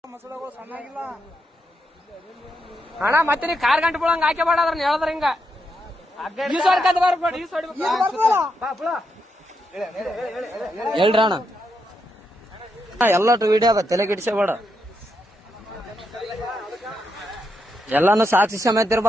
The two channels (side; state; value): both; normal; correlation 0.82